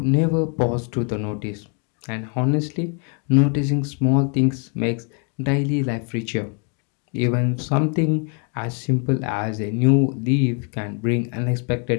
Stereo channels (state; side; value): quieter; right; 38.1 dB